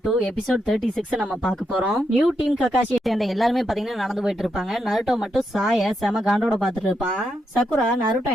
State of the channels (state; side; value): normal; both; correlation 0.82